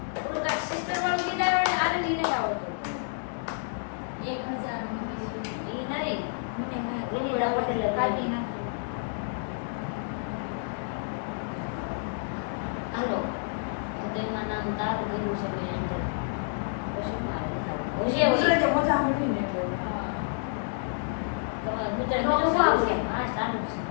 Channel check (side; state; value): right; silent; digital silence